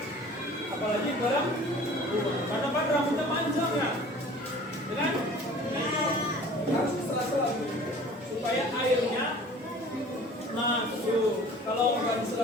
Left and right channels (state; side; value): normal; both; correlation 0.46